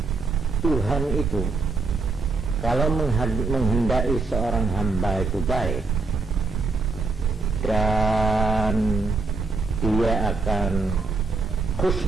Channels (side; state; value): left; quieter; 4.0 dB